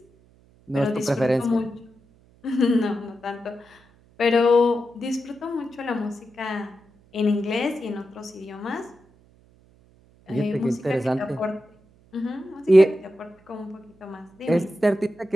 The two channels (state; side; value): noise; right; hum, 30 dB below the sound